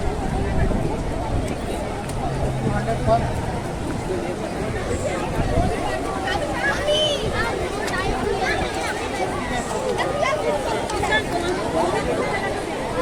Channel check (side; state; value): both; identical; correlation 1.00